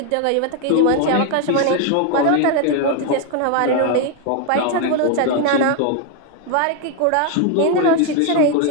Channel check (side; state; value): both; different; correlation 0.01